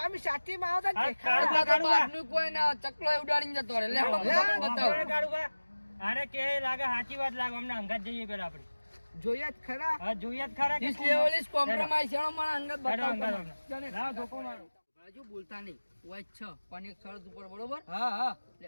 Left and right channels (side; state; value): both; inverted; correlation -1.00